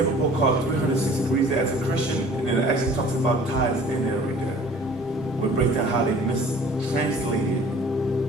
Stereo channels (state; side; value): normal; both; correlation 0.49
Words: a book called 360 Degrees as a Christian, and it actually talks about tithes in there right there. We break down how they mistranslated.